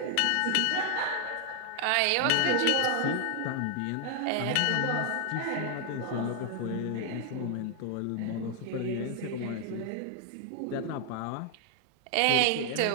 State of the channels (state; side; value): different; both; correlation 0.00